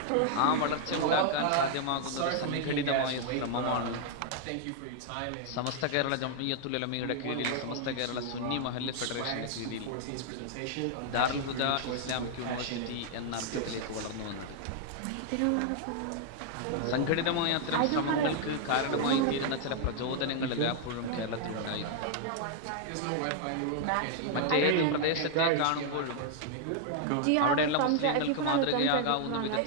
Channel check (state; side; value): different; both; correlation -0.01